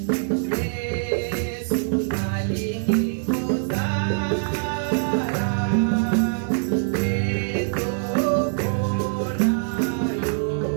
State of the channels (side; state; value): left; silent; digital silence